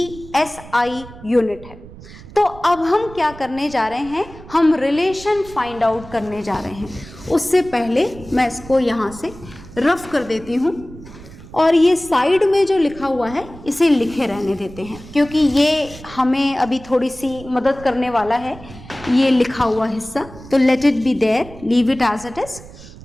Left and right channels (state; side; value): noise; right; rumble, 17 dB below the sound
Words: एसआई यूनिट है। तो अब हम क्या करने जा रहे हैं? हम रिलेशन फाइंड आउट करने जा रहे हैं। उससे पहले मैं इसको यहाँ से रफ कर देती हूँ, और ये साइड में जो लिखा हुआ है इसे लिखे रहने देते हैं, क्योंकि ये हमें अभी थोड़ी सी मदद करने वाला है ये लिखा हुआ हिस्सा। तो let it be there, leave it as it is.